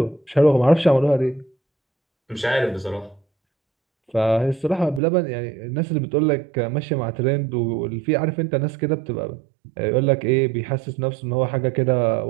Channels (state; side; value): drops out; left; at 5.0 s